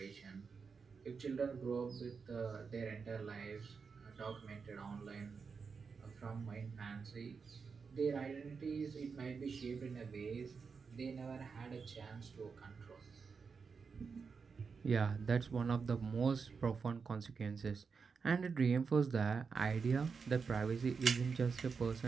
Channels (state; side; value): quieter; left; 5.4 dB